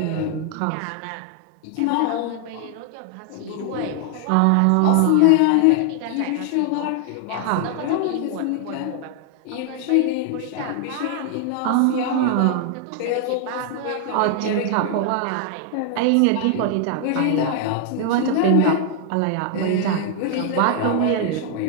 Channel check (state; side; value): different; both; correlation 0.00